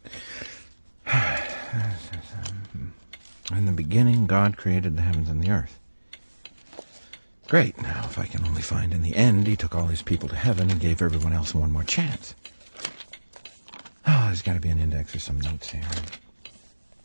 In the beginning, God created the heavens and the earth. Great. Now, if I can only find in the end, he took all his people to heaven and gave everyone else one more chance. Oh, there's got to be an index or some notes here.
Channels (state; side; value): inverted; both; correlation -1.00